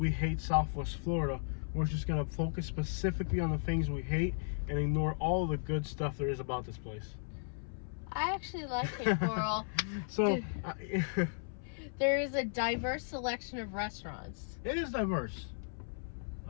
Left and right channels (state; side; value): silent; right; 54 dB below the other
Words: hate Southwest Florida, we're just gonna focus specifically on the things we hate and ignore all the good stuff there is about this place. I actually like Cape Coral. So, there is a diverse selection of restaurants. it is diverse.